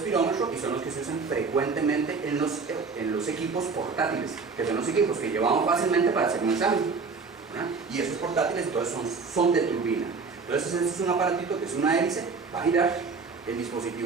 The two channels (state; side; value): quieter; left; 4.7 dB